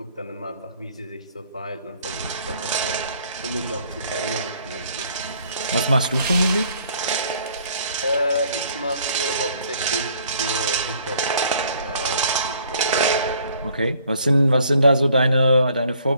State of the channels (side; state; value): both; inverted; correlation -0.60